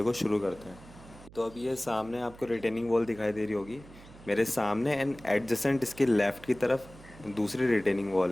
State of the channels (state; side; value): noise; right; hum, 20 dB below the sound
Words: को शुरू करते हैं। तो अब ये सामने आपको रिटेनिंग वॉल दिखाई दे रही होगी मेरे सामने, एंड एडजेसेंट इसके लेफ़्ट की तरफ दूसरी रिटेनिंग